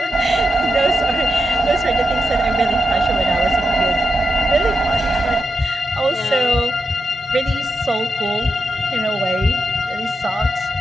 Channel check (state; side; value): normal; both; correlation 0.87